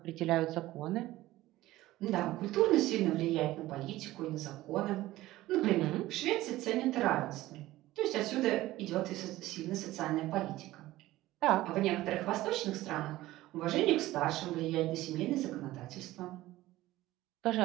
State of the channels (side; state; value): left; quieter; 16.5 dB